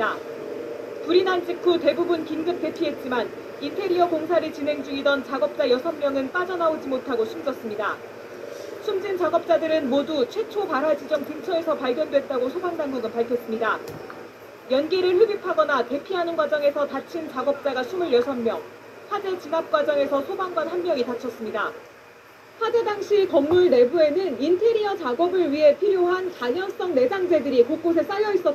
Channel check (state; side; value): identical; both; correlation 1.00